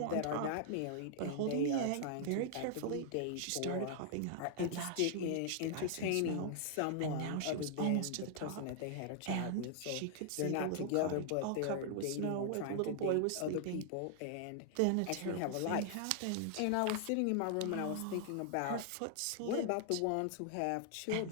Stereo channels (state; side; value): different; both; correlation -0.01